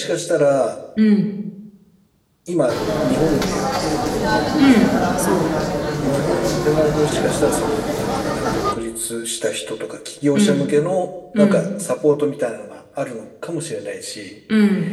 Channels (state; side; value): identical; both; correlation 1.00